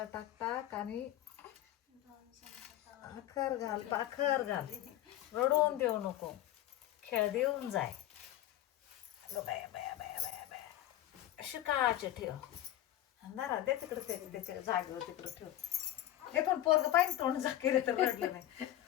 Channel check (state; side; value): quieter; right; 13.4 dB